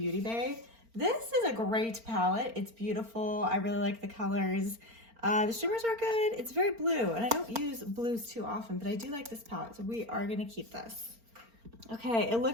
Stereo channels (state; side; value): late; left; 4.4 ms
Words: Bay. This is a great palette. It's beautiful. I really like the colors. The shimmers are good. It's very blue, and I don't use blues too often, but I do like this palette, so we are gonna keep this. Okay, it